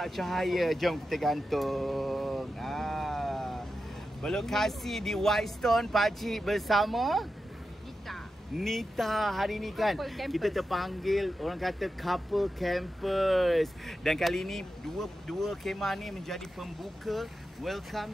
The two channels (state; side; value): normal; both; correlation 0.90